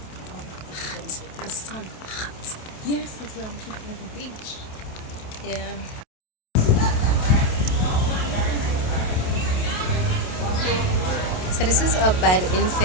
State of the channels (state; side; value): late; right; 27 ms